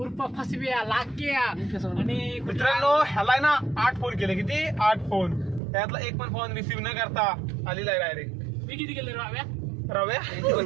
उर्फ फसव्या लाक्या आणि मित्रांनो ह्याला ना 8 फोन केले. किती 8 फोन, त्यातला एक पण फोन रिसीव्ह न करता आलेला आहे डायरेक्ट. मी किती केले रव्या रव्या एक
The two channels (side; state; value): left; drops out; at 5.6 s